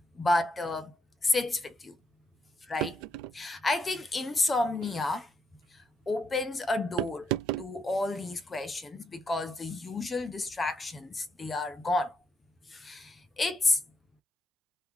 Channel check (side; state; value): both; normal; correlation 0.77